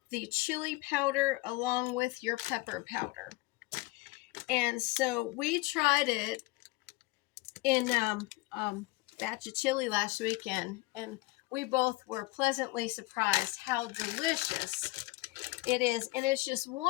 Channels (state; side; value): quieter; right; 21.5 dB